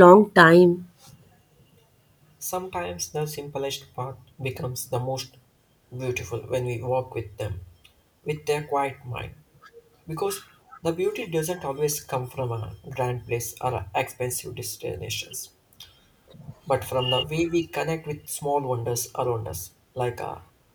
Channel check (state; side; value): identical; both; correlation 1.00